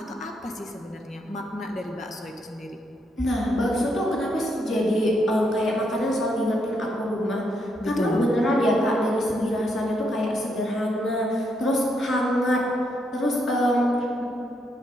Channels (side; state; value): both; normal; correlation 0.77